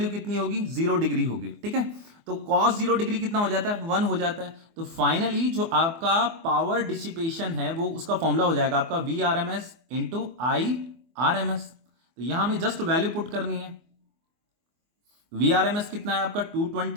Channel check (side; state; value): left; late; 24 ms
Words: कितनी होगी, 0 डिग्री होगी, ठीक है। तो कॉस 0 डिग्री कितना हो जाता है, 1 हो जाता है। तो फाइनली जो आपका पावर डिसिपेशन है वो उसका फॉर्मूला हो जाएगा आपका V R M S into I R M S. तो यहां हमें जस्ट वैल्यू पुट करनी है। वी आर एम एस कितना है आपका